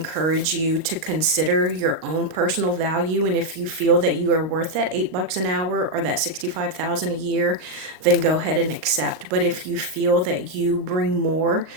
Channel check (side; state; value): left; late; 38 ms